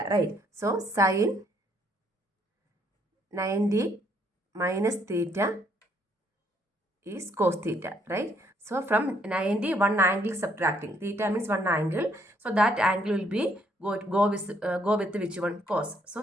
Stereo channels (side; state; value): both; normal; correlation 0.68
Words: right? So sin 90 minus theta is cos theta, right? So from 90, one angle subtracting. Theta means one angle. So that angle will be go with which one? Cos. So